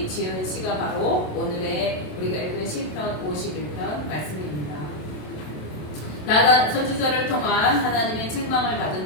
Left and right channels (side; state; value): right; late; 27 ms